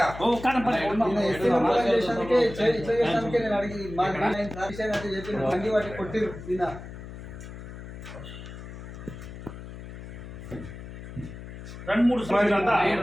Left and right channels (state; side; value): noise; left; hum, 12 dB below the sound